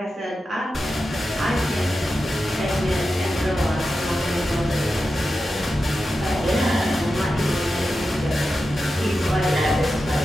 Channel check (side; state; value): both; normal; correlation 0.91